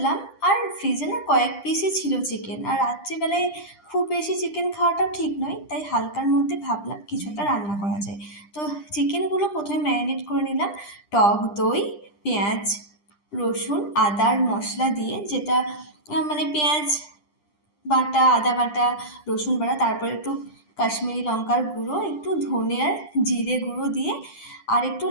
আর ফ্রিজে না কয়েক পিসই ছিল চিকেন, আর রাত্রিবেলায় খুব বেশি চিকেন খাওয়াটাও ঠিক নয়, তাই হালকার মধ্যে ভাবলাম কিছু একটা রান্না করা যায়। তো চিকেনগুলো প্রথমে ম্যারিনেট করে নিলাম টক দই, পেঁয়াজ, রসুন, আদার মশলা দিয়ে, যেটা মানে পেঁয়াজ বাটা, আদা বাটা, রসুন বাটা, তারপর একটু কাশ্মীরি লঙ্কার গুঁড়ো, একটু ধনে আর জিরে গুঁড়ো দিয়ে আর একটু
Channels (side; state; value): right; late; 10 ms